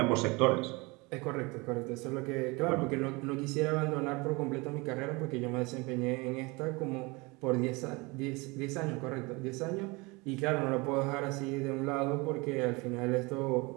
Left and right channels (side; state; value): left; quieter; 25.7 dB